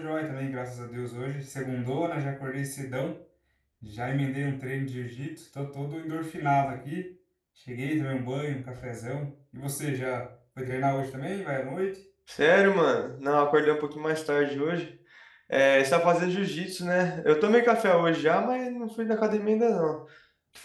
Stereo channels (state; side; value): identical; both; correlation 1.00